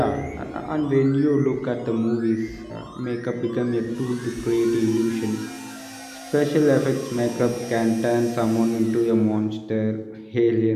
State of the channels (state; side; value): identical; both; correlation 1.00